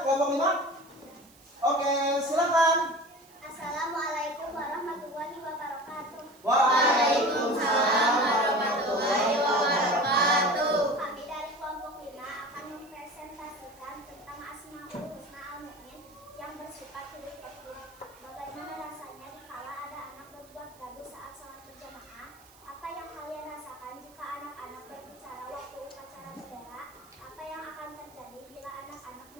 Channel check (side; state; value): right; noise; hiss, 26 dB below the sound